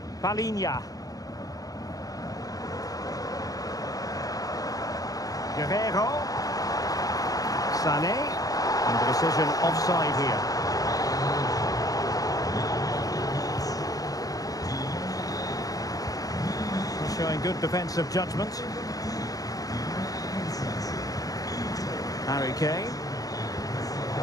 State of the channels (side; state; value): right; late; 0.17 ms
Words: Palinha. Guerrero. Sané. And the decision offside here. Showing good defensive judgment. Harry Kane.